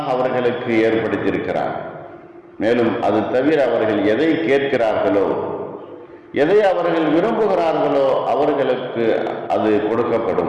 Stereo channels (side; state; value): both; identical; correlation 1.00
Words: அவர்களுக்கு ஏற்படுத்தியிருக்கிறார். மேலும் அது தவிர அவர்கள் எதை கேட்கிறார்களோ, எதை அவர்கள் விரும்புகிறார்களோ அவர்களுக்கு அது